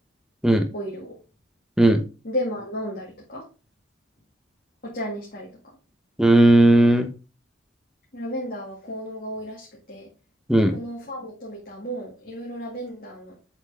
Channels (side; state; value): both; normal; correlation 0.83